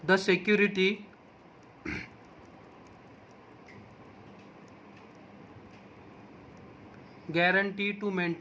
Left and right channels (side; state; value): both; identical; correlation 1.00